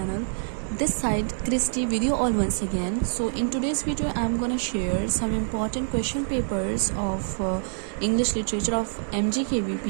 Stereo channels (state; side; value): silent; left; digital silence